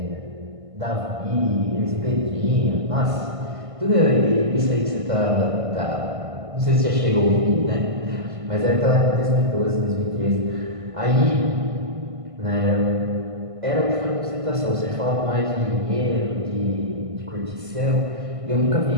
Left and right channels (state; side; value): late; left; 1.5 ms